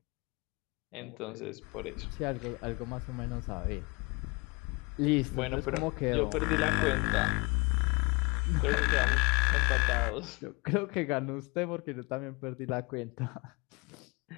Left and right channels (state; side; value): quieter; right; 28.1 dB